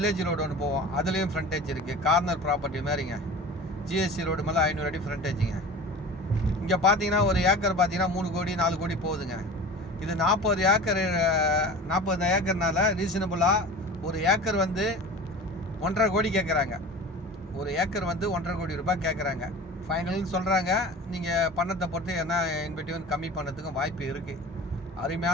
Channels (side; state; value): both; normal; correlation 0.36